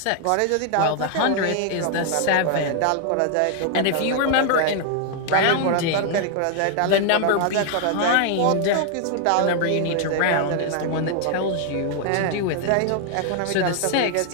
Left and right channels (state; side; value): different; both; correlation 0.00